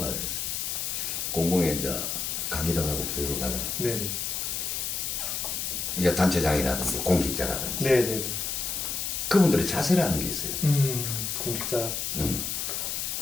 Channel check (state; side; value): noise; left; hiss, 2 dB below the sound